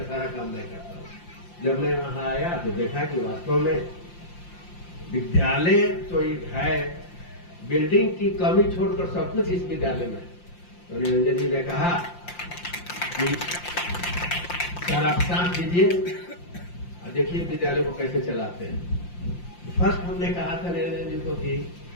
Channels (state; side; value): late; right; 5.7 ms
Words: सारा काम मैं करता हूँ। जब मैं वहां आया तो देखा कि वास्तव में विद्यालय तो है, बिल्डिंग की कमी छोड़कर सब कुछ इस विद्यालय में। तो निरंजन जी ने कहा कि सर आप शांत कीजिए और देखिए विद्यालय को कैसे चलाते हैं। फर्स्ट हमने कहा था निरंजन जी को कि